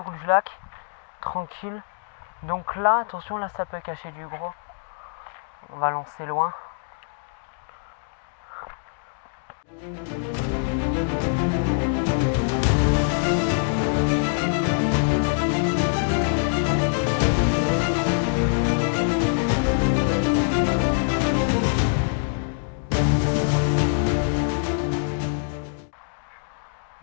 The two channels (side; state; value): right; silent; digital silence